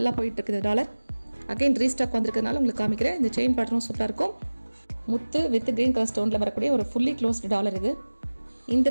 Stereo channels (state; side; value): inverted; both; correlation -1.00